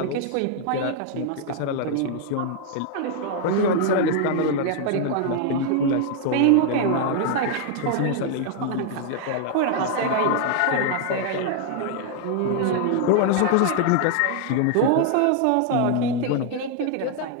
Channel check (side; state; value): both; different; correlation 0.00